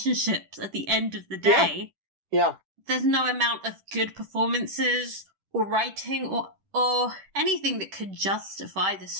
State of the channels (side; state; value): left; late; 10 ms